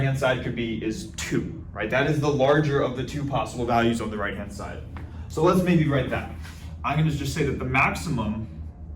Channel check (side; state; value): both; identical; correlation 1.00